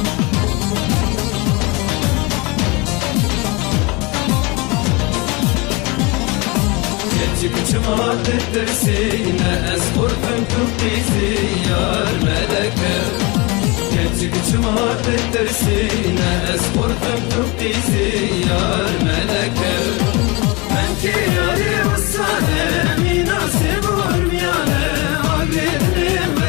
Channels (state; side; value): quieter; right; 26.7 dB